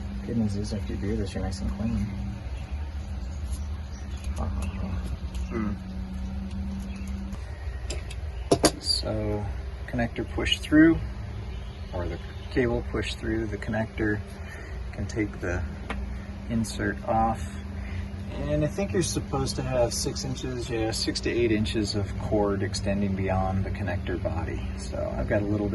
Good news is after you do this, you're nice and clean. So connector pushed through, or the cable pushed through the connector. Can take the insert off, and I think you're supposed to have 6 inches, 6 to 8 inches of cord extending beyond the connector body. So I've got a little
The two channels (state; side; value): identical; both; correlation 1.00